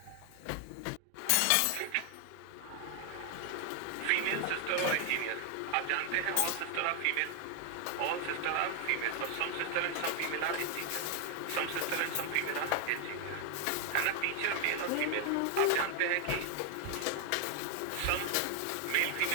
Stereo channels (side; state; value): both; different; correlation 0.00